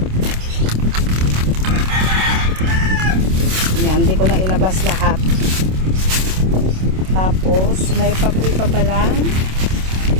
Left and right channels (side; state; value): left; late; 27 ms